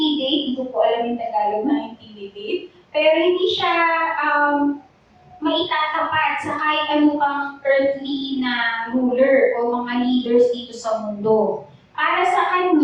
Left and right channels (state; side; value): identical; both; correlation 1.00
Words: hindi ko po alam yung Tagalog na intimidate, pero hindi siya maitatapat sa kahit ano pang earthly na ruler o mga leaders dito sa mundo. Para sa